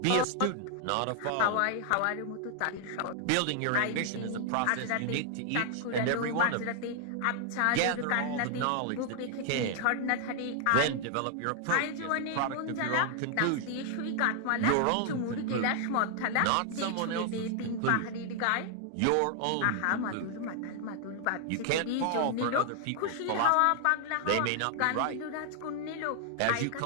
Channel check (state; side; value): different; both; correlation 0.00